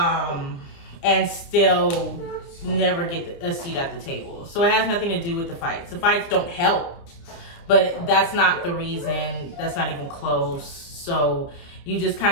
and still never get a seat at the table. So it has nothing to do with the fights. The fights don't help, but that's not the reason. That's not even close. So you just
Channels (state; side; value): late; right; 29 ms